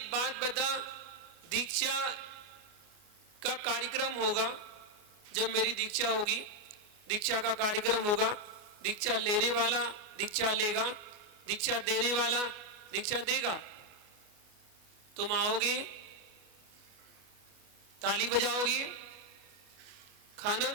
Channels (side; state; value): left; late; 28 ms